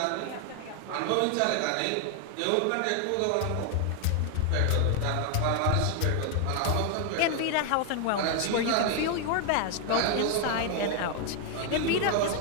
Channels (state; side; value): different; both; correlation 0.00